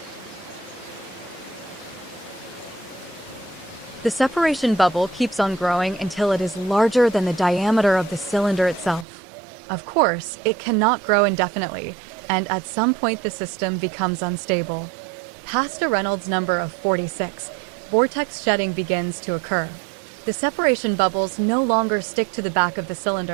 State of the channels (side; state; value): left; drops out; at 9.1 s